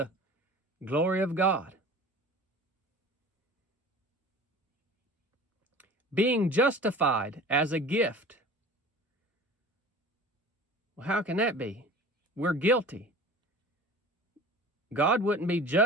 glory of God, being justified as a gift. Well, how can that be? We're guilty. God wouldn't be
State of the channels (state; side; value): normal; both; correlation 0.41